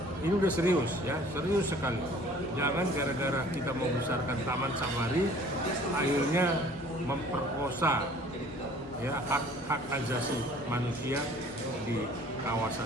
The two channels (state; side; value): normal; both; correlation 0.51